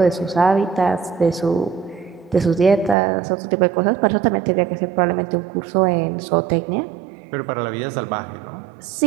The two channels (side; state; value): left; drops out; at 3.0 s